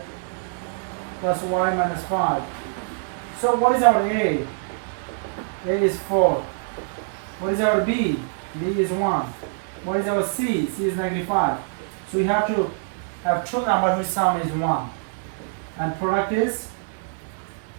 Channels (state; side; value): silent; left; digital silence